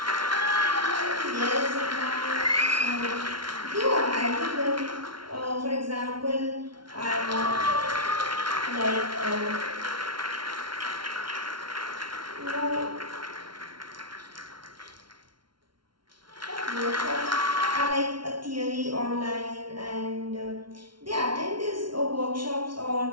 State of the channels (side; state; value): left; late; 0.73 ms